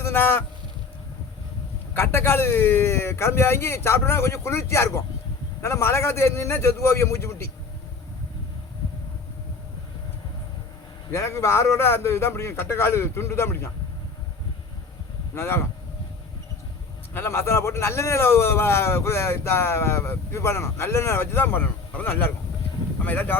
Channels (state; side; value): quieter; right; 4.5 dB